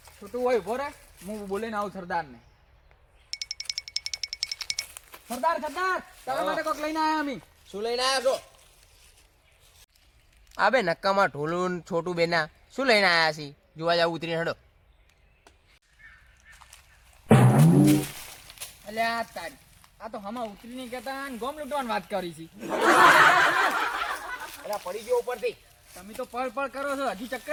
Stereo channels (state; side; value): identical; both; correlation 1.00